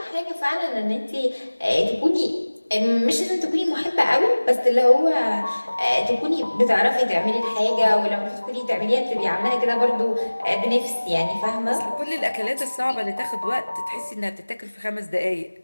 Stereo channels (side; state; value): both; inverted; correlation -1.00